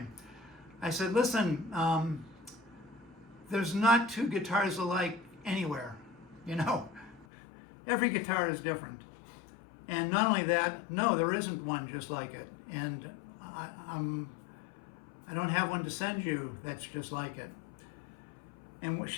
I said, listen, there's not 2 guitars alike anywhere. You know, every guitar is different. And not only that, no, there isn't one just like it. And I don't have one to send you that's just like it. And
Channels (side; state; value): right; drops out; at 7.2 s